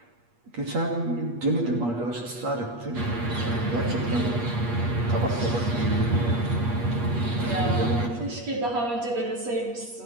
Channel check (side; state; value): left; late; 8.4 ms